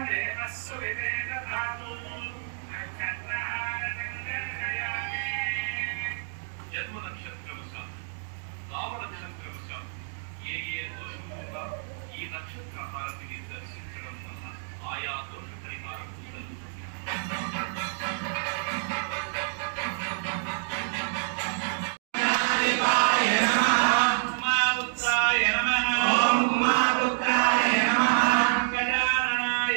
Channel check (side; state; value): left; silent; digital silence